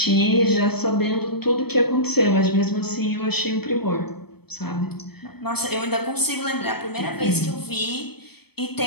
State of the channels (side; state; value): right; late; 0.97 ms